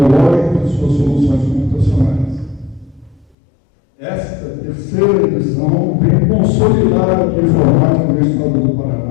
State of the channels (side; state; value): right; drops out; at 3.4 s